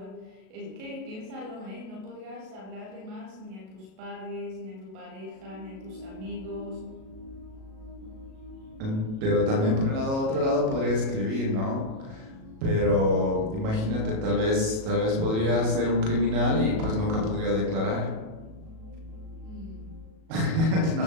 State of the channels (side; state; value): left; late; 37 ms